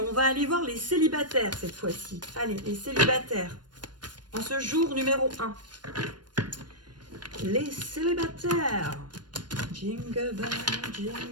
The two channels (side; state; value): left; late; 0.70 ms